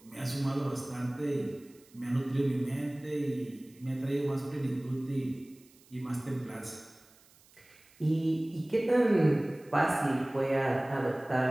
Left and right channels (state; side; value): noise; right; hiss, 28 dB below the sound